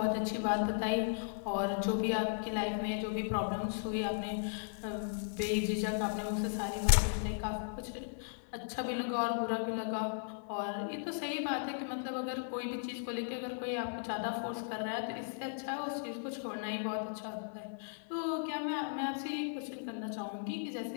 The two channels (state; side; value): silent; right; digital silence